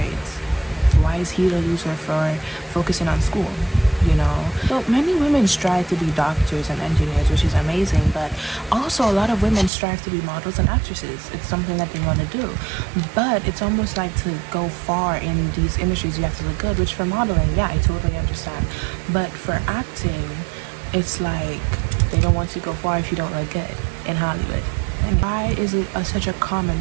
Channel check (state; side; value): drops out; left; at 9.7 s